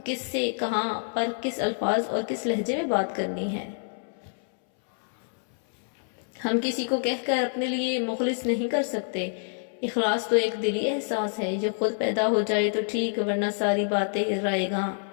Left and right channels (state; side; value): silent; right; 60 dB below the other